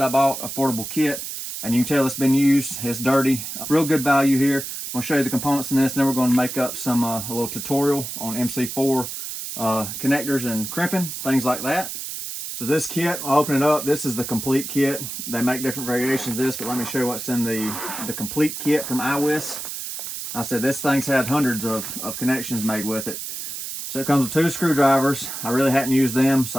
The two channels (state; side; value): noise; right; hiss, 7 dB below the sound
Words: I bought, affordable kit. And you can tell it's been used, it's dirty. Real good value here. I'm gonna show you the components in this, and then we're gonna make up some a little tutorial on MC4 connectors and crimping, things like that. So this kit, I'll open it up. This is the complete kit. They make different variations of this, but let me show you what's in the complete kit from iWis. I said this thing's had hundreds of connections made with it. So it comes with 2 screwdrivers. I really hadn't used them,